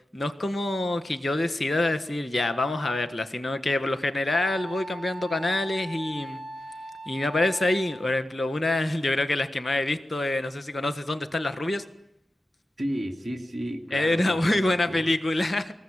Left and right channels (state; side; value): normal; both; correlation 0.93